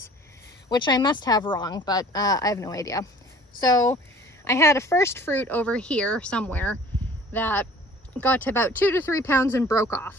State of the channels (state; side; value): normal; both; correlation 0.49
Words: which I must have wrong, but I have no idea. So I had a first fruit over here somewhere that got to about 2 to 3 pounds and broke off.